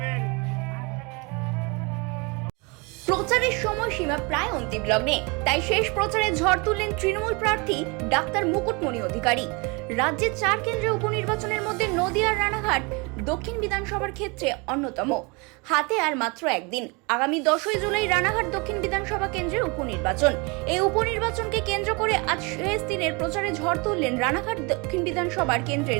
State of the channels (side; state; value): left; quieter; 29.2 dB